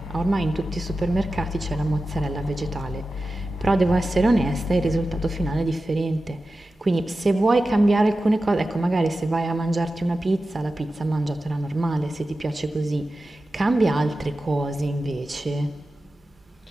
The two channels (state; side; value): normal; both; correlation 0.93